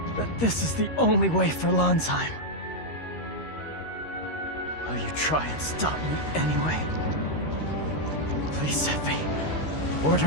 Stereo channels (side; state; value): right; late; 13 ms